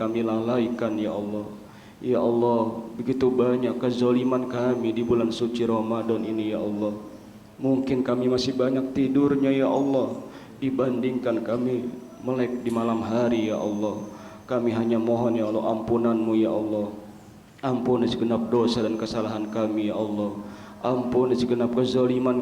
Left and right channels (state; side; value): identical; both; correlation 1.00